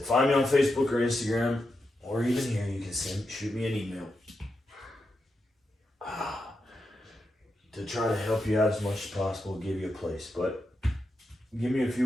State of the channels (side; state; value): both; normal; correlation 0.86